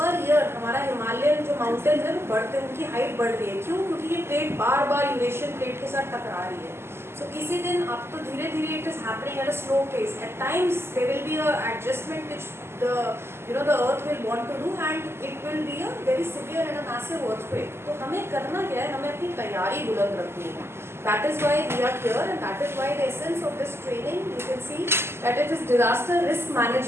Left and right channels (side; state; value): left; late; 0.12 ms